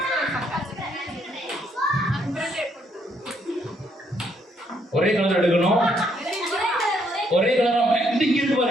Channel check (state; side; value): normal; both; correlation 0.72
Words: ஒரே கலர் எடுக்கணும், ஒரே கலரா இங்க இருக்கு